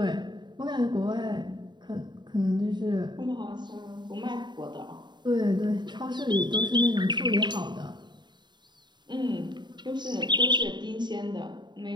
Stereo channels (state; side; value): late; left; 0.22 ms